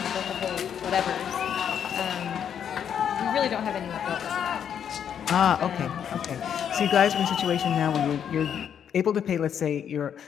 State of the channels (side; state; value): right; quieter; 8.5 dB